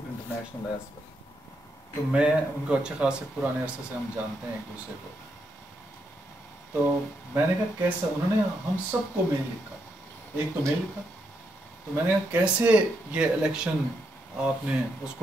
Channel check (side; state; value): both; normal; correlation 0.79